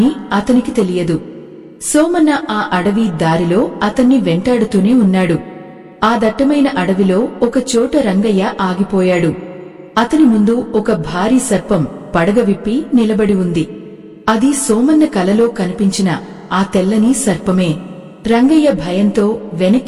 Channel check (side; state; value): both; identical; correlation 1.00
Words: అతనికి తెలియదు. సోమన్న ఆ అడవి దారిలో అతన్ని వెంటాడుతూనే ఉన్నాడు. ఆ దట్టమైన అడవిలో ఒక చోట రంగయ్య ఆగిపోయాడు. అతని ముందు ఒక భారీ సర్పం పడగ విప్పి నిలబడి ఉంది. అది సోమన్న కలలో కనిపించిన ఆ తెల్లని సర్పమే. రంగయ్య భయంతో